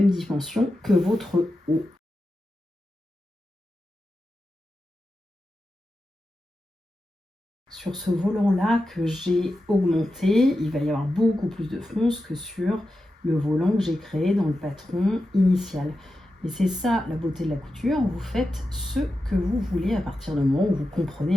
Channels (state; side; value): normal; both; correlation 0.91